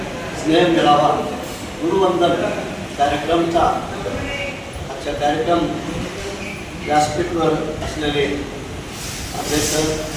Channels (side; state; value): both; identical; correlation 1.00